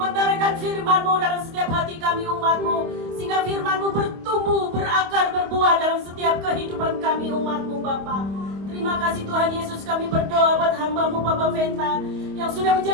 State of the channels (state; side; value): late; left; 25 ms